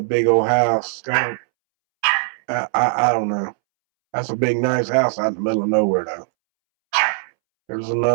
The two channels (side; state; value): left; silent; 66 dB below the other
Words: big old house. I don't know. That's a big, nice house out in the middle of nowhere, though. There's